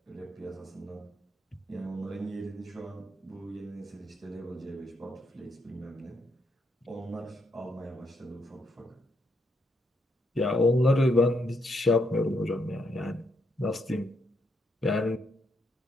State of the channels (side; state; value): both; normal; correlation 0.77